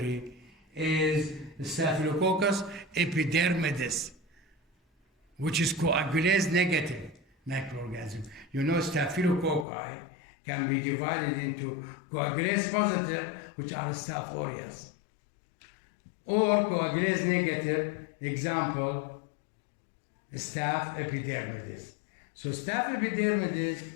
is Staphylococcus epidermidis, which is coagulase negative microorganism. You know, staphylococci can be divided into coagulase positive, which are Staph aureus, or coagulase negative, example, Staph epidermidis. So Staph epidermidis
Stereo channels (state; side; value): drops out; right; at 9.7 s